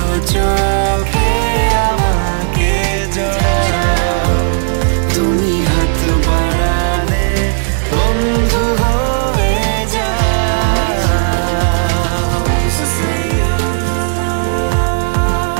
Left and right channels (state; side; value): silent; left; digital silence